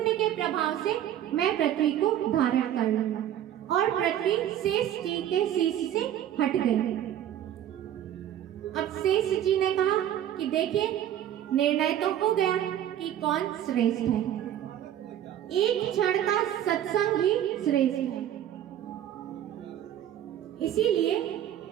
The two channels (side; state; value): left; quieter; 11.2 dB